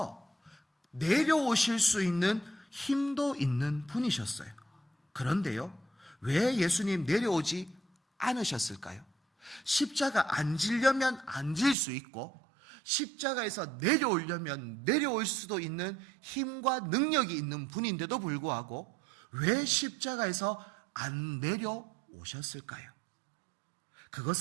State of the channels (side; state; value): left; drops out; at 11.8 s